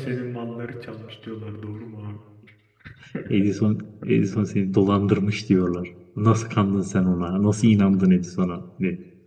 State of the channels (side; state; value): both; identical; correlation 1.00